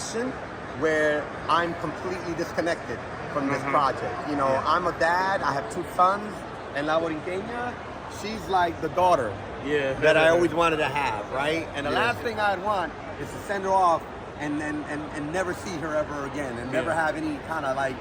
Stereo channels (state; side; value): identical; both; correlation 1.00